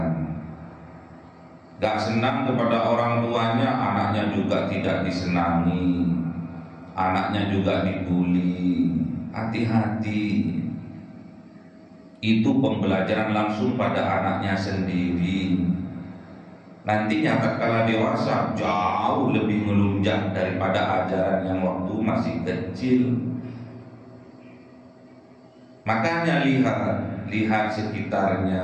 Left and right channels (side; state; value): both; identical; correlation 1.00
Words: Gak senang kepada orang tuanya, anaknya juga tidak disenangi, anaknya juga dibully. Hati-hati, itu pembelajaran langsung pada anaknya sendiri. Nantinya tatkala dewasa jauh lebih melunjak daripada ajaran yang waktu masih kecil. Makanya lihat